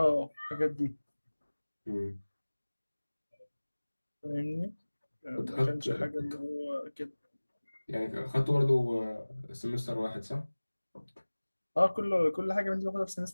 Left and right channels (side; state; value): both; inverted; correlation -1.00